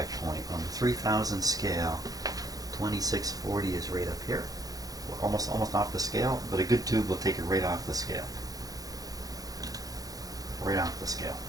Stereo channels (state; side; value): late; left; 0.18 ms